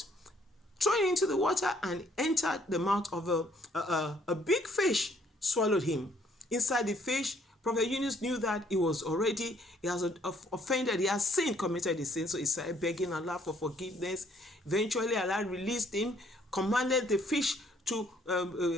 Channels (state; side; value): normal; both; correlation 0.64